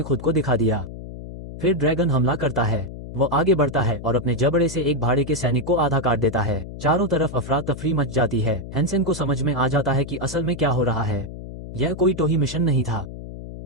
खुद को दिखा दिया। फिर ड्रैगन हमला करता है। वो आगे बढ़ता है और अपने जबड़े से एक भाड़े के सैनिक को आधा काट देता है। चारों तरफ अफरा तफरी मच जाती है। हेंसेन को समझ में आ जाता है कि असल में क्या हो रहा है। यह कोई टोही मिशन नहीं था,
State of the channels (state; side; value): noise; left; hum, 11 dB below the sound